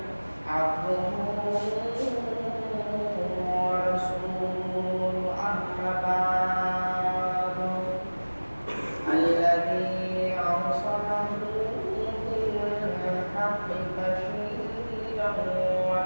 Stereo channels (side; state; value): both; inverted; correlation -1.00